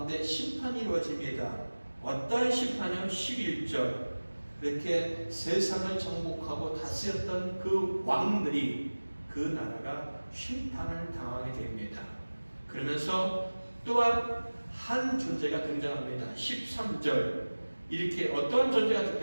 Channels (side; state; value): both; inverted; correlation -1.00